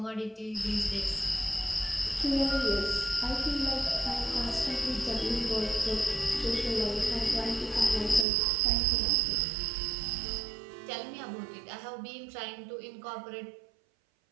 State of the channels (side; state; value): left; drops out; at 8.2 s